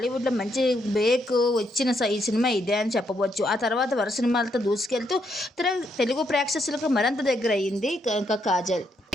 మంచి బ్రేక్ వచ్చిన ఈ సినిమా ఇదే అని చెప్పవచ్చు. ఆ తర్వాత వరుస సినిమాలతో దూసుకెళ్తూ తెలుగు ప్రేక్షకులకు మరింత దగ్గర అయ్యింది కాజల్.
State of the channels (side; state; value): both; normal; correlation 0.76